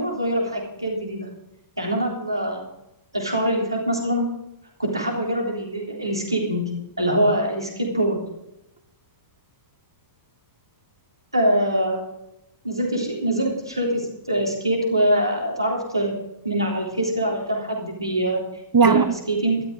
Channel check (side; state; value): both; inverted; correlation -0.55